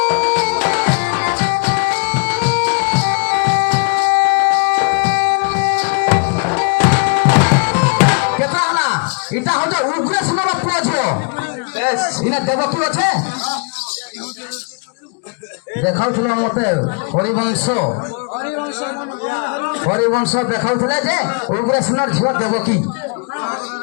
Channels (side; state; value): right; quieter; 34.2 dB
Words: কেতা হলা এটা হচ্ছে উগ্রেশ্বর পুଅ ঝିଅ বেশ ইনা দেব কি আছে দেখাউছিল মতে হরিবংশ দেখাউଥିଲେ যে উগ্রেশ্বর ঝিଅ দেবকী